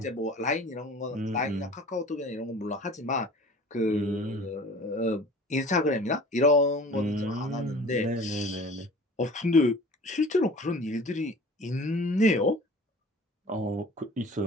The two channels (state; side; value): normal; both; correlation 0.44